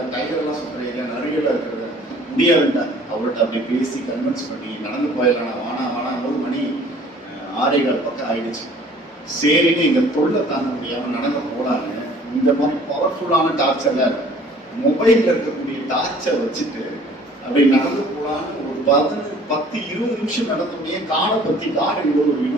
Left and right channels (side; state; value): both; normal; correlation 0.53